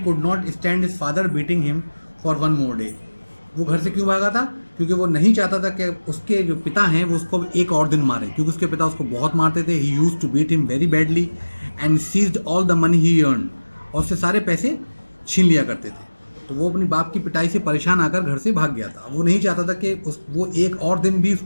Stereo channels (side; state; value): both; inverted; correlation -1.00